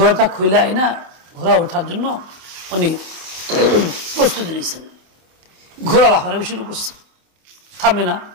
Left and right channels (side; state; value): left; late; 27 ms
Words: খুইলাই না, ঘোড়া ওঠার জন্য উনি প্রস্তুতি নিয়েছেন। ঘোড়া লাফালাফি শুরু করছে, থামে না,